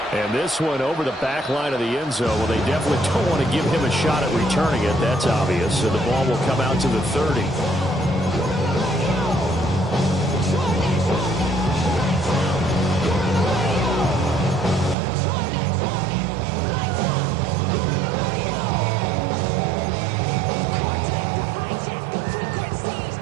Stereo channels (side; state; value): left; drops out; at 15.0 s